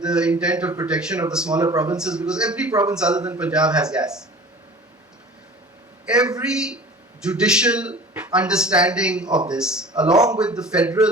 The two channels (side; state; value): both; normal; correlation 0.41